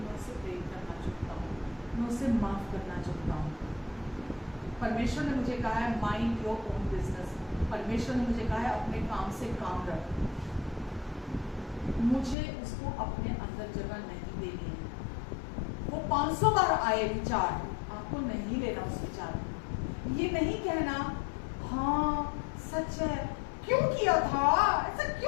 उसे प्रेम करना चाहता हूँ, मैं उसे माफ करना चाहता हूँ। परमेश्वर ने मुझे कहा है माइंड योर ओन बिजनेस। परमेश्वर ने मुझे कहा है अपने काम से काम रख, मुझे उसको अपने अंदर जगह नहीं देनी है। वो 500 बार आए विचार, आपको नहीं लेना उस विचार में। ये नहीं कहना हाँ सच है, क्यों किया था ऐसा,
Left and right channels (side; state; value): right; drops out; at 12.4 s